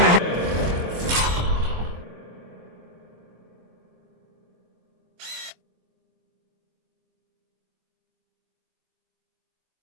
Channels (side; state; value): left; late; 23 ms